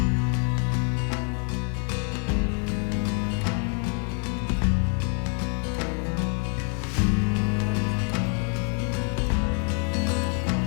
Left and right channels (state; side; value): quieter; right; 36.3 dB